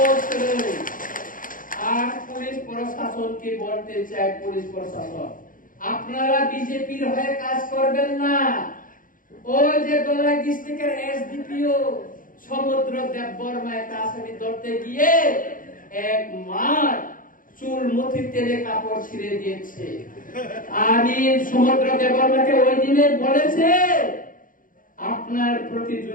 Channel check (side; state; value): right; late; 0.40 ms